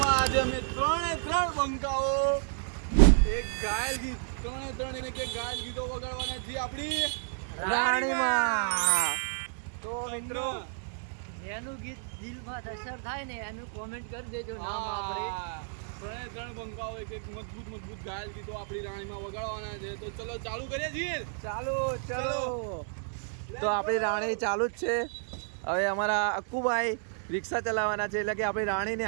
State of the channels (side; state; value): left; silent; digital silence